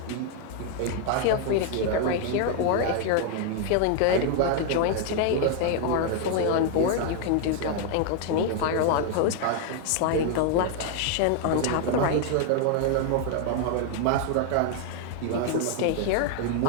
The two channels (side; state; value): both; different; correlation 0.00